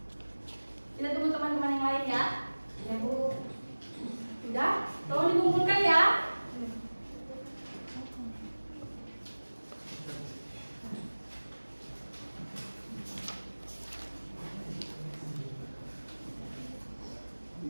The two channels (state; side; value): inverted; both; correlation -1.00